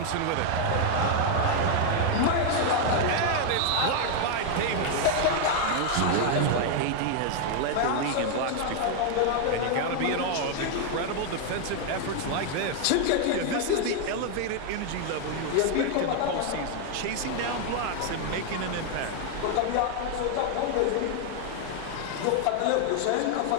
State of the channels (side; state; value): both; different; correlation 0.00